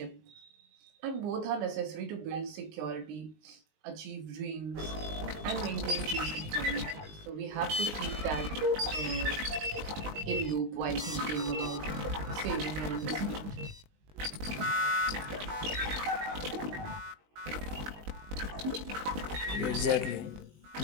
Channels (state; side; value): late; left; 20 ms